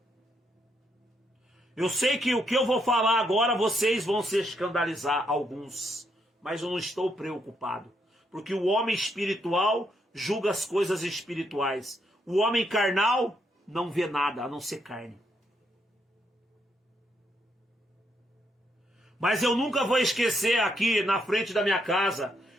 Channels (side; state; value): both; normal; correlation 0.77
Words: Eu sei que o que eu vou falar agora, vocês vão se escandalizar, alguns. Mas eu não estou preocupado. Porque o homem espiritual julga as coisas espirituais. O homem carnal não vê nada, a não ser carne. Mas eu nunca vou esquecer aqui na frente da minha casa.